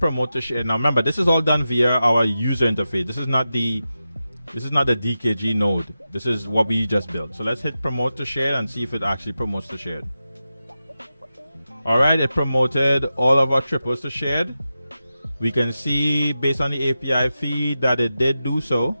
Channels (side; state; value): both; inverted; correlation -0.91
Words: to share. Now remember, this is all done via our user interface. This is not the DKG node. This is what we just built. So let's hit promote to share and see if it actually promotes to shared. All right, it promoted all of our triples to shared. We can see based on the API feed that it did do so.